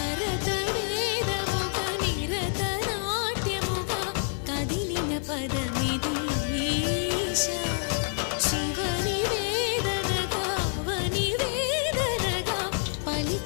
భరత వేదముగా నిరత నాట్యముగా కదిలిన పదమిది ఈశా శివని వేదనగా అవని వేదనగా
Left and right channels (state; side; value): silent; right; 60 dB below the other